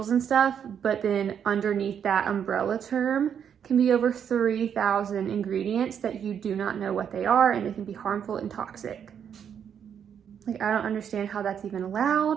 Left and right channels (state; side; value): quieter; left; 8.2 dB